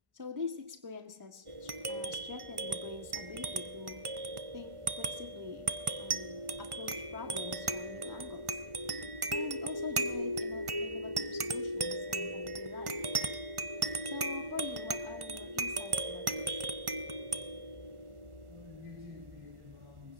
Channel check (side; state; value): left; late; 1.1 ms